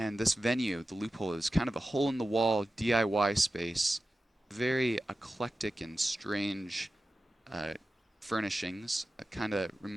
this venue, the Loophole, is kind of a hole-in-the-wall DIY space, very eclectic and strange uh, furnishings. It kind of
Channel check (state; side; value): normal; both; correlation 0.93